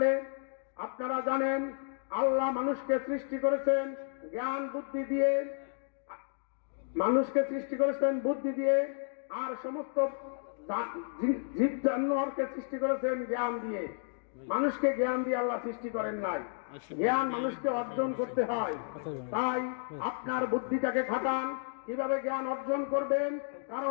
আপনারা জানেন আল্লাহ মানুষকে সৃষ্টি করেছেন জ্ঞান বুদ্ধি দিয়ে, মানুষকে সৃষ্টি করেছেন বুদ্ধি দিয়ে, আর সমস্ত জীব জানোয়ারকে সৃষ্টি করেছেন জ্ঞান দিয়ে। মানুষকে জ্ঞান দিয়ে আল্লাহ সৃষ্টি করেন নাই, জ্ঞান মানুষকে অর্জন করতে হয়। তাই আপনার বুদ্ধিটাকে খাটান। কিভাবে জ্ঞান অর্জন করবেন?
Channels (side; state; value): right; silent; digital silence